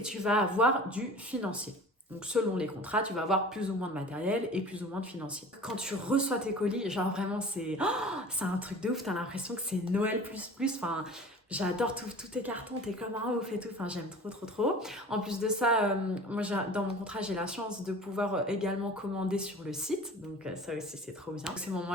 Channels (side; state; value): both; normal; correlation 0.41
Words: tu vas avoir du financier. Donc selon les contrats, tu vas avoir plus ou moins de matériel et plus ou moins de financier. Quand tu reçois tes colis, genre vraiment c'est un truc de ouf, t'as l'impression que c'est Noël plus, enfin... J'adore tous tes cartons, t'es comme un ouf et tout, enfin j'aime trop. En plus de ça, moi dans mon contrat j'ai la chance de pouvoir également commander sur le site, donc ça aussi c'est trop bien. Ces